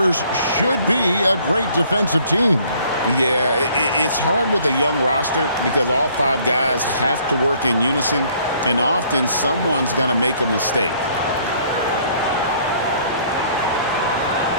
should be a great defensive team. Yeah, it's hard with a young roster because all five guys have to work in unison, and often someone's going to make a mistake.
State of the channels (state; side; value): inverted; both; correlation -0.60